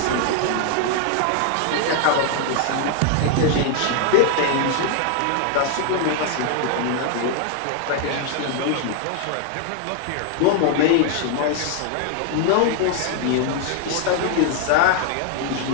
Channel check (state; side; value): different; both; correlation 0.00